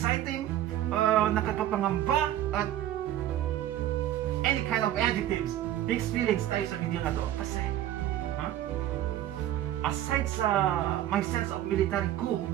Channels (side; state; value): left; quieter; 12.6 dB